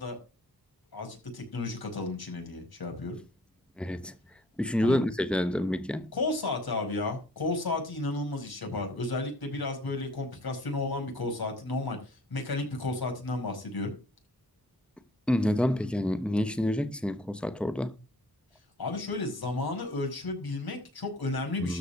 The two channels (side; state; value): both; normal; correlation 0.54